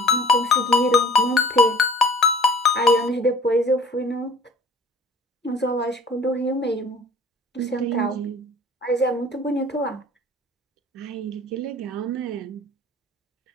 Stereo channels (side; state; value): both; normal; correlation 0.49